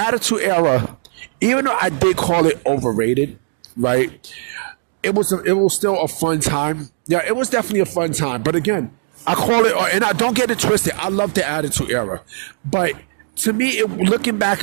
Era, even though I did call it overrated, right, it was still a fun time. Yeah, it was definitely a fun time. But again, I call it, and I don't get it twisted, I love the Attitude Era. But to me, looking back,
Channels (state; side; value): silent; left; digital silence